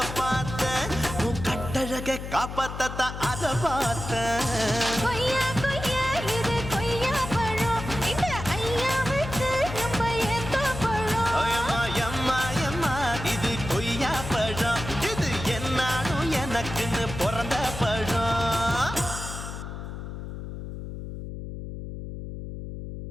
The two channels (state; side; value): noise; left; hum, 8 dB below the sound